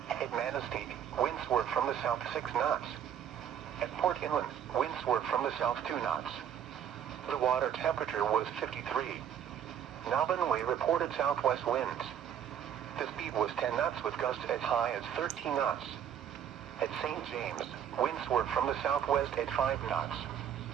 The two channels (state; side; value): quieter; left; 9.3 dB